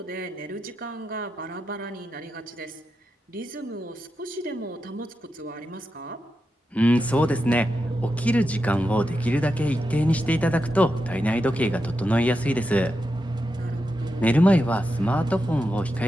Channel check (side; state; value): both; normal; correlation 0.88